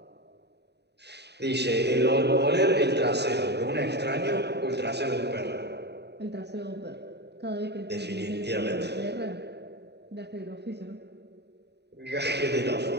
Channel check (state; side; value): late; left; 0.49 ms